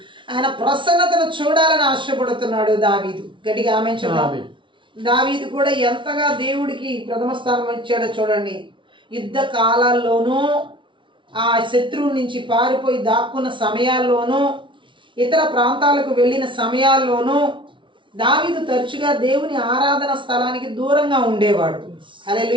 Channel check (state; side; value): late; left; 0.24 ms